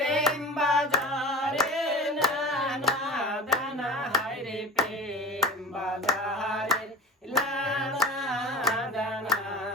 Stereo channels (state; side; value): normal; both; correlation 0.35